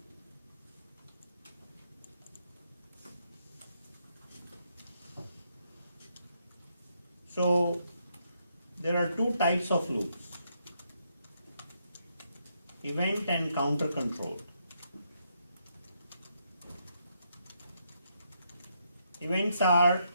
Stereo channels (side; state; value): both; inverted; correlation -0.77